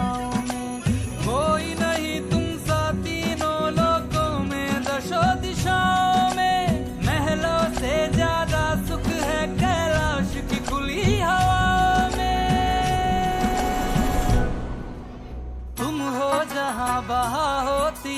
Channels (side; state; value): both; identical; correlation 1.00